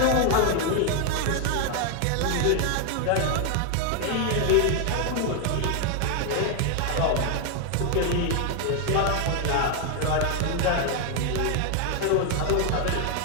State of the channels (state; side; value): different; both; correlation 0.01